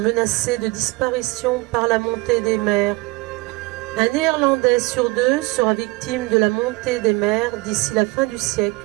de disparition par la montée des mers. Un Néerlandais sur 2 sera victime de la montée des mers d'ici la fin du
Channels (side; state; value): left; quieter; 23.2 dB